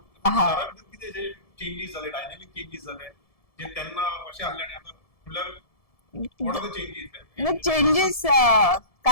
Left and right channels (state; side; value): late; right; 1.7 ms